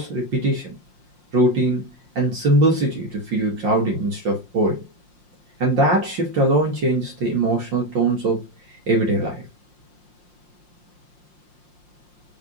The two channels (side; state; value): left; late; 5.6 ms